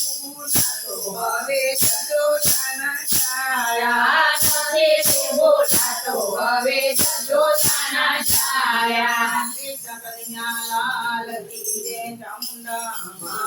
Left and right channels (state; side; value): identical; both; correlation 1.00